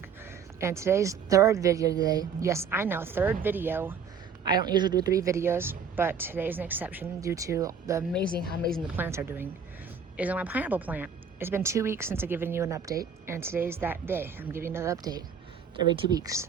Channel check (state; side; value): quieter; left; 6.3 dB